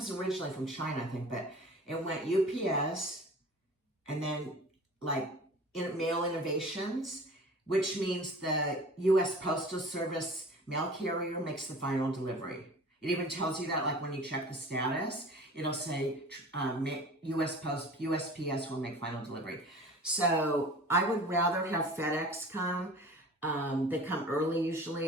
originally from China, I think, but it went UPS and then like Mail Innovations, which means the U.S. Postal Service mail carrier makes the final delivery. It even tells you that, like when you check the status, it'll say USPS will make final delivery. So I would rather have FedEx come. They come early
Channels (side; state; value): both; normal; correlation 0.42